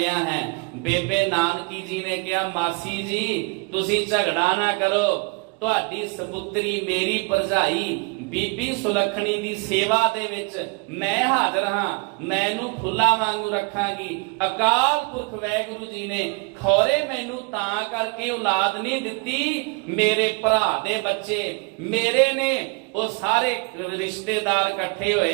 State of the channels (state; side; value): quieter; left; 30.6 dB